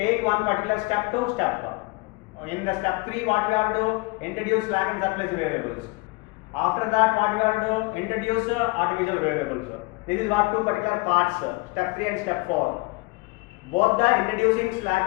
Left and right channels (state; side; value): quieter; right; 25.3 dB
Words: one particular step to step. In the step 3, what we have to do? Introduce slack and surplus variables. After that, what we have to do? Introduce artificial variables. This is what two particular parts, step 3 and step 4. Both the introducing